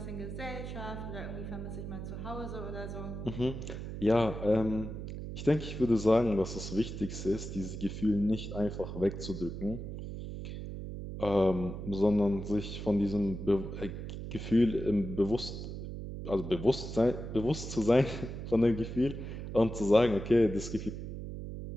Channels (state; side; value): noise; right; hum, 7 dB below the sound